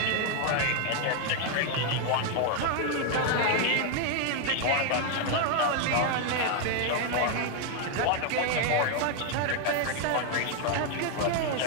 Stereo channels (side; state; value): both; different; correlation 0.01